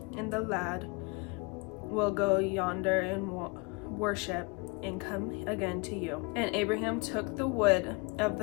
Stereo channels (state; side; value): quieter; right; 29.6 dB